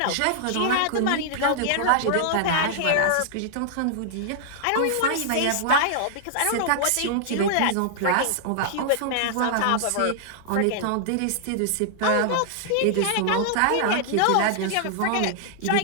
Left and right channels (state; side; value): different; both; correlation -0.01